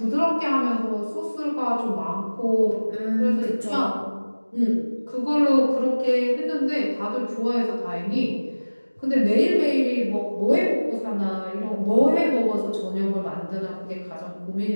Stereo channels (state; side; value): inverted; both; correlation -1.00